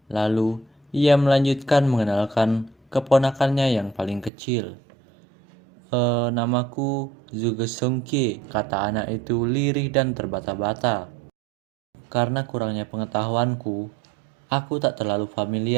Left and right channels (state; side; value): drops out; left; at 4.3 s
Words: Lalu ia melanjutkan mengenalkan keponakannya yang paling kecil. Namaku Zhuge Songke, kata anak itu lirih dan terbata-bata. Karena kurangnya pengetahuanku, aku tak terlalu